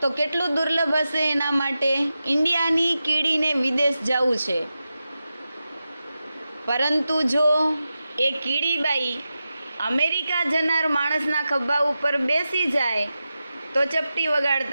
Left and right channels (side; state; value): both; inverted; correlation -0.92